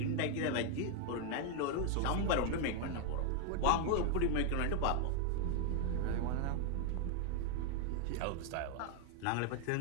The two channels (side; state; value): both; different; correlation 0.00